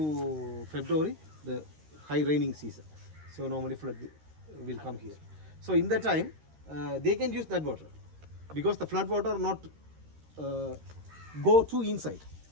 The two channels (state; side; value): late; left; 13 ms